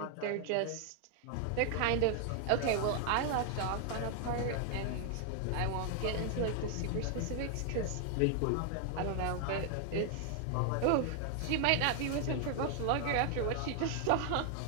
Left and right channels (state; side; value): different; both; correlation 0.00